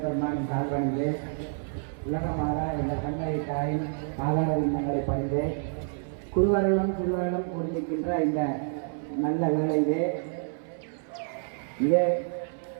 பெருமானின் கால்வணிலே உலகமாக இந்த கண்ணை தாயின் ஆதார விண்ணங்களை பணிந்து குருவர்களும் சிறுவர்களும் கூடியிருக்கின்ற இந்த நல்ல வேளையிலே இதே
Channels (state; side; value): silent; left; 57 dB below the other